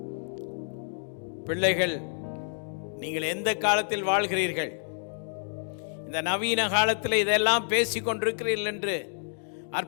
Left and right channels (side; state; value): right; silent; digital silence